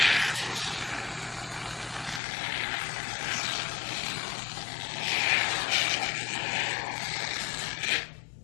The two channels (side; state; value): right; drops out; at 2.2 s